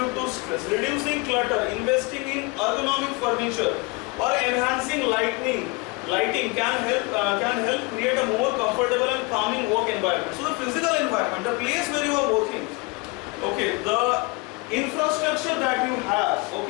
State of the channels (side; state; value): right; quieter; 27.2 dB